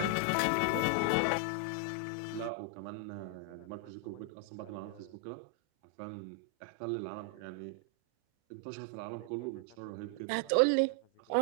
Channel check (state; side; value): different; both; correlation 0.00